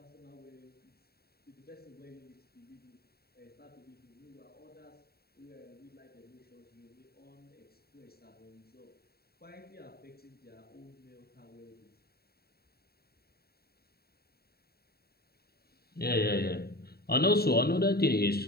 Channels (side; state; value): right; late; 0.45 ms